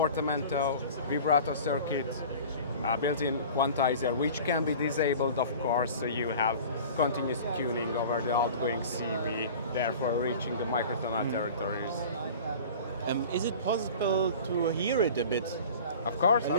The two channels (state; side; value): inverted; both; correlation -0.40